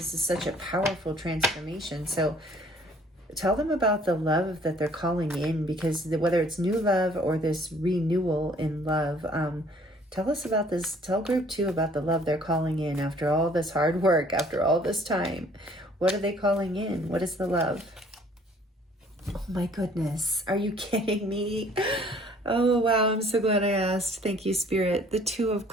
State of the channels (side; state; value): both; normal; correlation 0.57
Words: is such a powerful transformation. So tell them about the love that they're calling in, because whether it's new love or this renewal in love, tell us about this. Tell group 2 about the love they're calling in after all this hard work, after all this time. What are they calling in? What is the love? Oh my goodness. Are you kidding me? Oh, wow. I'm so glad I asked. Thank you, Spirit. The 2 of